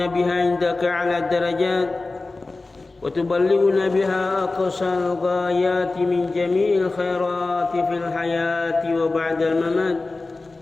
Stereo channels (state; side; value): quieter; right; 3.4 dB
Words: بها عندك على الدرجات وتبلغنا بها أقصى الغايات من جميع الخيرات في الحياة وبعد الممات.